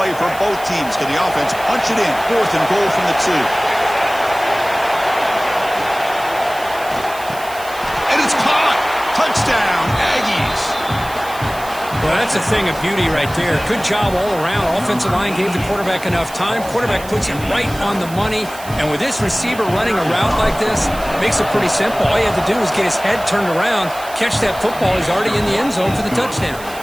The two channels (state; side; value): noise; right; hiss, 16 dB below the sound